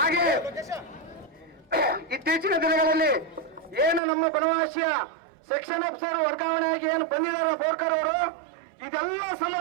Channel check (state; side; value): drops out; left; at 4.0 s